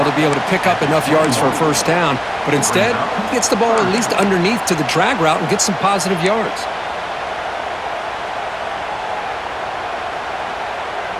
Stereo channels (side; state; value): both; identical; correlation 1.00